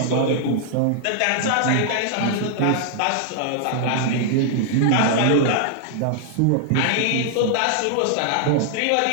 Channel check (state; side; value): different; both; correlation 0.00